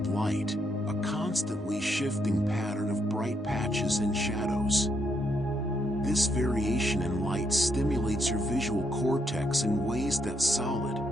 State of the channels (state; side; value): normal; both; correlation 0.76